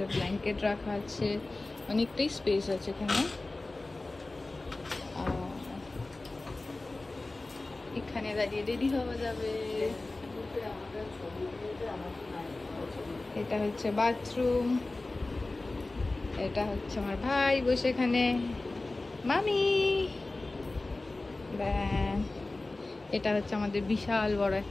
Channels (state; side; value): quieter; right; 3.1 dB